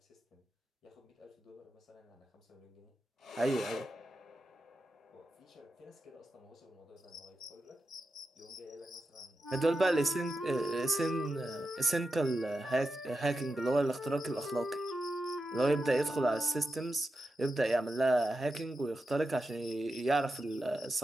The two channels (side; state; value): both; normal; correlation 0.89